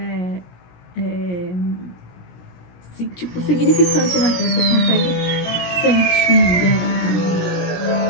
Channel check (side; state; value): right; late; 17 ms